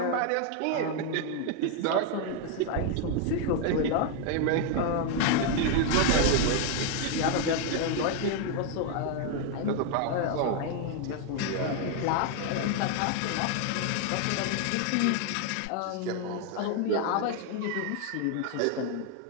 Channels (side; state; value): both; different; correlation 0.01